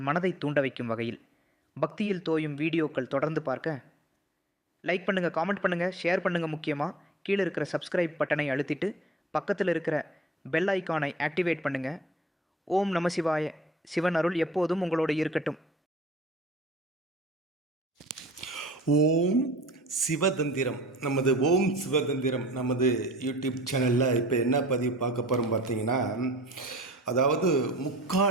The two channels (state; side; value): normal; both; correlation 0.50